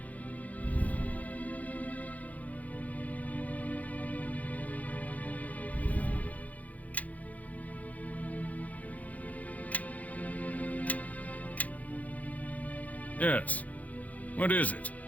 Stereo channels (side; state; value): right; late; 0.074 ms